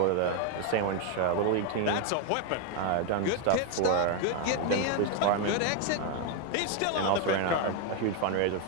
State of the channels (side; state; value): both; different; correlation 0.01